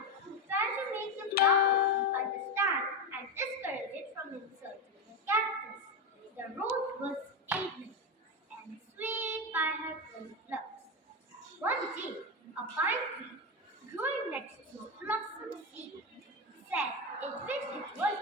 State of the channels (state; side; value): normal; both; correlation 0.13